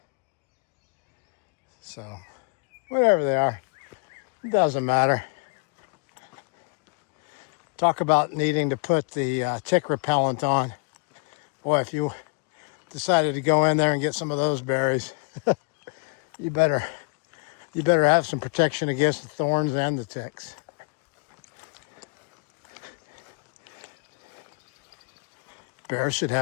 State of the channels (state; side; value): quieter; right; 35.3 dB